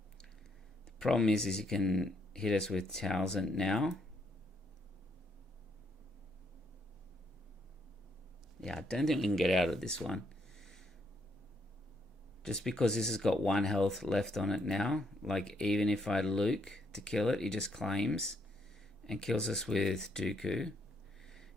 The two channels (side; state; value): both; normal; correlation 0.73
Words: The problem is he can hit us with Townsend now. Yeah, I don't think we can get out of this one. Just because this has got 1 health left on it now. Like, even if I Luke to kill it, he just claims and kills us with Dooku.